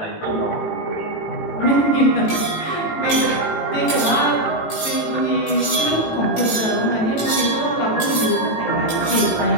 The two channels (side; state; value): right; late; 18 ms